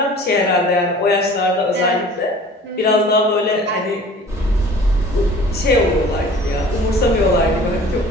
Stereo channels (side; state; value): both; normal; correlation 0.46